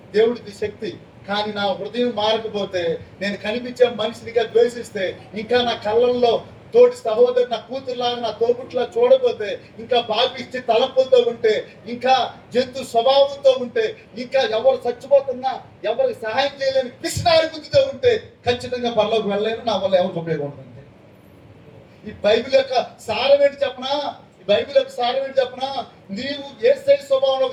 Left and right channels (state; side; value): identical; both; correlation 1.00